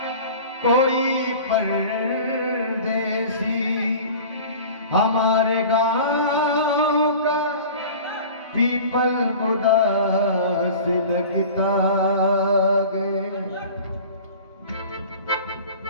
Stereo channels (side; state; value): both; inverted; correlation -0.40